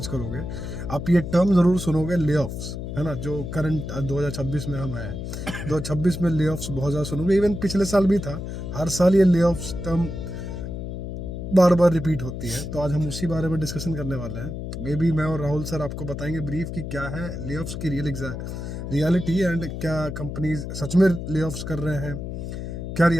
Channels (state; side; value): noise; left; hum, 6 dB below the sound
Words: करोगे, आप ये टर्म ज़रूर सुनोगे, लेऑफ्स, है ना। जो करंट 2026 में हम हैं, 2026 में लेऑफ्स बहुत ज़्यादा सुनोगे। इवन पिछले साल भी था। हर साल ये लेऑफ्स टर्म बार बार रिपीट होती है। तो आज हम उसी बारे में डिस्कशन करने वाले हैं। मे बी मैं और राहुल सर आपको बताएंगे ब्रीफ कि क्या है लेऑफ्स की रियलिटी, एंड क्या कंपनीज सच में लेऑफ्स कर रहे हैं, क्या